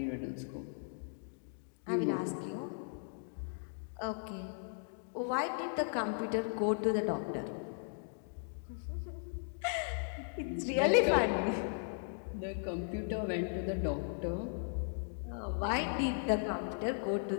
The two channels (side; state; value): right; silent; digital silence